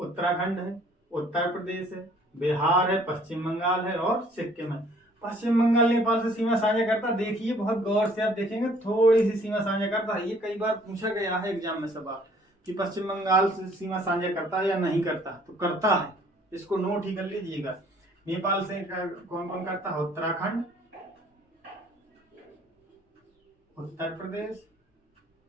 है, उत्तर प्रदेश है, बिहार है, पश्चिम बंगाल है और सिक्किम है। पश्चिम बंगाल नेपाल से सीमा साझा करता, देखिए बहुत गौर से आप देखेंगे थोड़ी सी सीमा साझा करता है। ये कई बार पूछा गया है एग्जाम में सवाल कि पश्चिम बंगाल से सीमा साझा करता है या नहीं करता, तो करता है, इसको नोट ही कर लीजिएगा। नेपाल से कौन कौन करता है? उत्तराखंड, उत्तर प्रदेश,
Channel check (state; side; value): normal; both; correlation 0.58